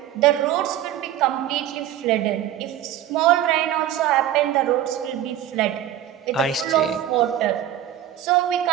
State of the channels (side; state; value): left; quieter; 11.7 dB